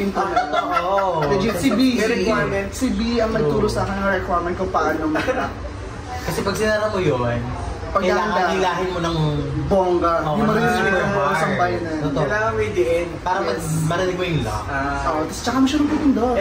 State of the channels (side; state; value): both; identical; correlation 1.00